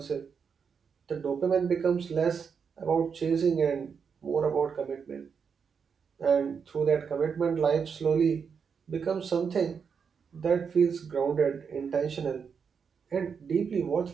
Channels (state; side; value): quieter; left; 6.3 dB